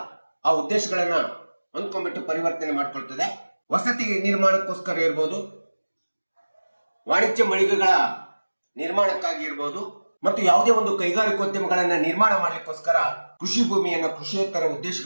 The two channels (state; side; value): inverted; both; correlation -1.00